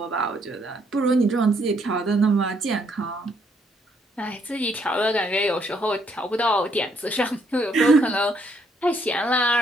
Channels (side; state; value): both; normal; correlation 0.70